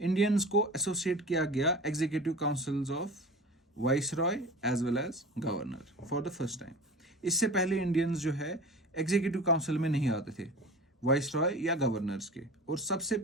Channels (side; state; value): both; normal; correlation 0.37